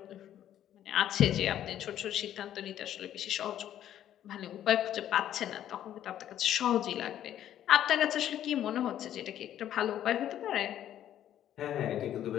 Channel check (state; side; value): quieter; right; 11.3 dB